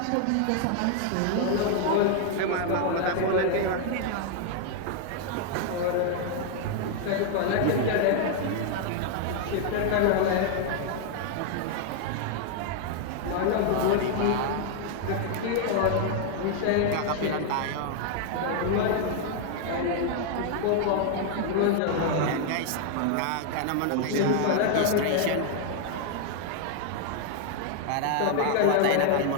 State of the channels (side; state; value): both; different; correlation 0.00